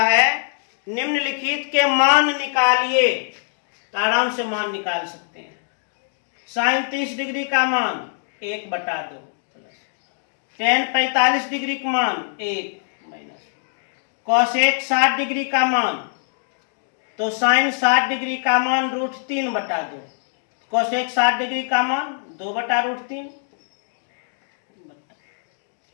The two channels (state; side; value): silent; right; digital silence